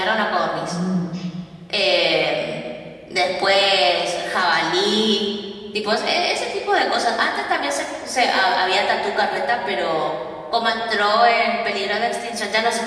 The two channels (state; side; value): identical; both; correlation 1.00